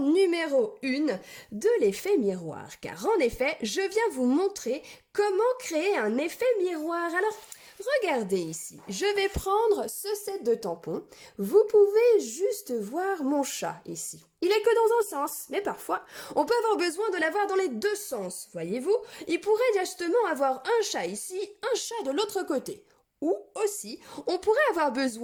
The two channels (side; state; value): both; identical; correlation 1.00